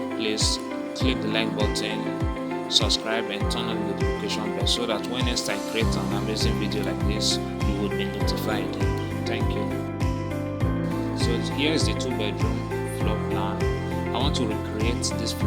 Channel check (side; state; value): both; identical; correlation 1.00